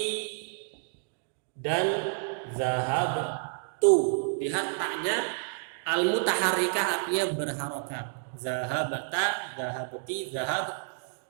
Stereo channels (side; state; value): left; silent; 58 dB below the other